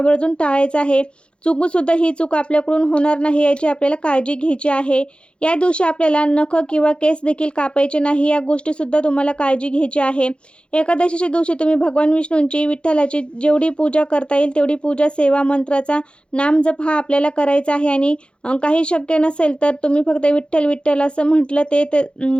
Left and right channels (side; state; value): right; late; 0.056 ms